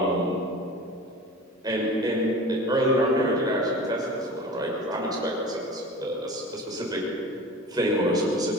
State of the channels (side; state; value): both; normal; correlation 0.37